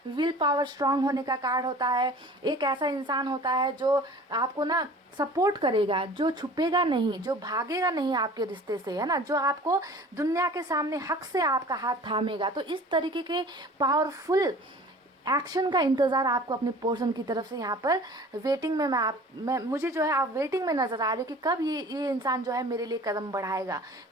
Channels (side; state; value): both; normal; correlation 0.45